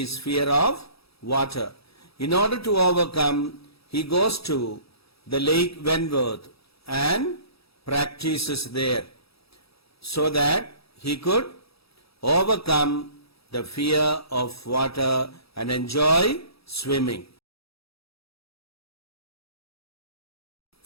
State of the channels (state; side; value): late; right; 0.77 ms